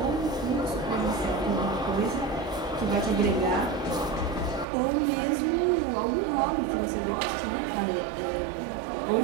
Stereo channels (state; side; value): drops out; left; at 4.7 s